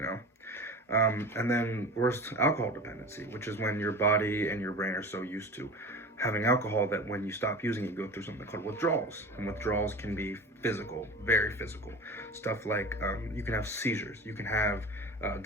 and then worst, alcohol dependency, which is when your body and your brain are so used to having alcohol that when you stop using it, you go through something called withdrawals. And withdrawals can be physical, very physical. Stuff like you can have seizures, you can have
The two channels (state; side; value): normal; both; correlation 0.34